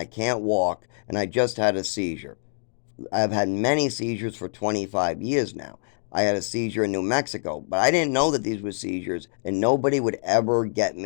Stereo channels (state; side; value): silent; right; digital silence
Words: can't walk. And I just had a seizure. I've had many seizures for 25 years now. I had a seizure in New Mexico, but I didn't know that these were seizures, and nobody would ever get